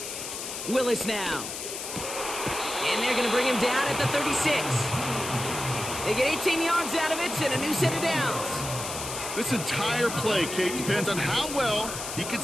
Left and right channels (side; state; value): left; noise; hiss, 7 dB below the sound